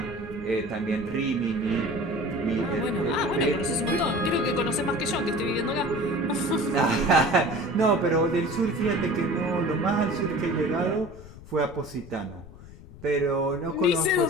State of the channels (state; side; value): noise; left; rumble, 18 dB below the sound